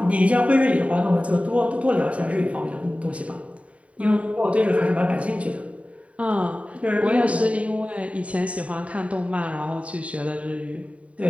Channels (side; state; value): left; late; 0.065 ms